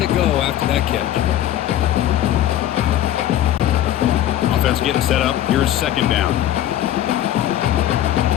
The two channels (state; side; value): quieter; right; 12.2 dB